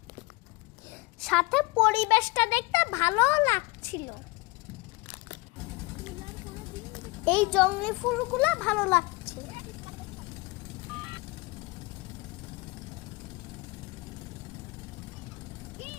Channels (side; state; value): right; quieter; 24.1 dB